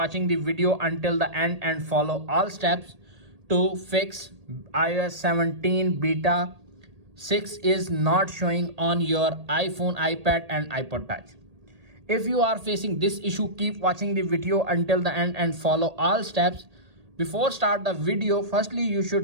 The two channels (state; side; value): late; left; 1.8 ms